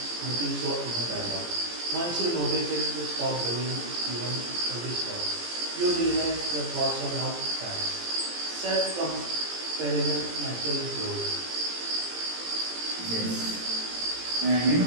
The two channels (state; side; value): late; left; 17 ms